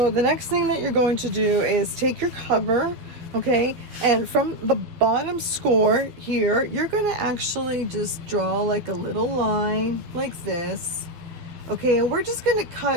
the next thing that you're going to do is take your cover, okay, and from the bottom score here, you're going to actually just draw like a little line like this, Okay, and we're just gonna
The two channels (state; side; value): late; left; 12 ms